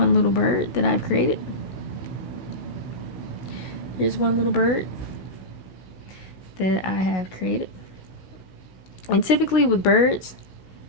little bird that I've created. Here's one little bird that I have created. And typically with birds,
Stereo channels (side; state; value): right; late; 16 ms